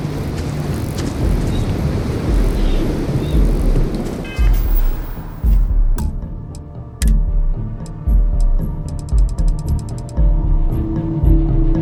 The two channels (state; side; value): identical; both; correlation 1.00